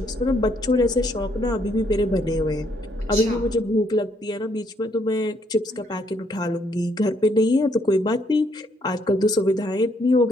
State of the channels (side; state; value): both; normal; correlation 0.71